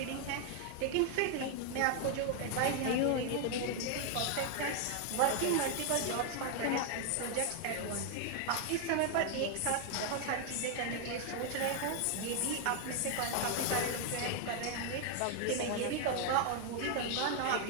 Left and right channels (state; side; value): different; both; correlation 0.00